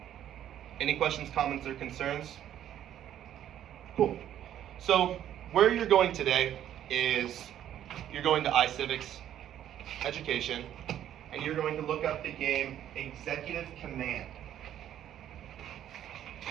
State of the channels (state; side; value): quieter; left; 11.0 dB